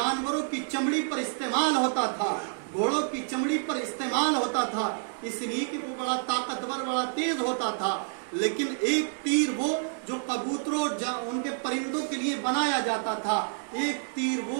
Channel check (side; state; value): left; silent; digital silence